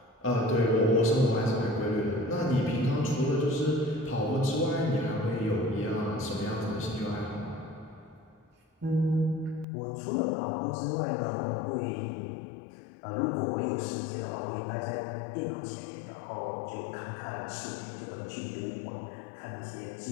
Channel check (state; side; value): drops out; right; at 9.7 s